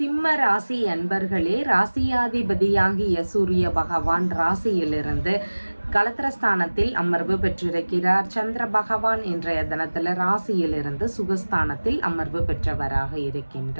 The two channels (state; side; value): inverted; both; correlation -1.00